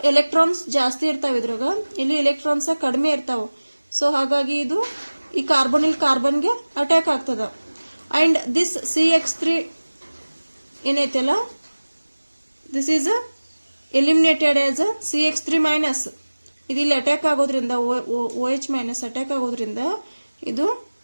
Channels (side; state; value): both; inverted; correlation -1.00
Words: ಎಲೆಕ್ಟ್ರಾನ್ಸ್ ಜಾಸ್ತಿ ಇರ್ತಾವ, ಇದ್ರಾಗ ಇಲ್ಲಿ ಎಲೆಕ್ಟ್ರಾನ್ಸ್ ಕಡಿಮೆ ಇರ್ತಾವ. ಸೊ ಹಾಗಾಗಿ ಇದು ಈ ಕಾರ್ಬೊನಿಲ್ ಕಾರ್ಬನ್ಗೆ ಅಟ್ಯಾಕ್ ಆಗ್ತದ. ಅಂಡ್ ದಿಸ್ CX3 ಏನೈತಲ್ಲ, this is eliminated as CX3 minus. ಇದು ಇಲ್ಲಿ ಅಟ್ಯಾಕ್ ಆಗೋದ್ರಿಂದ OH ಮೈನಸ್ ಅಟ್ಯಾಕ್ ಆಗೋದ್ರಿಂದ ಇದು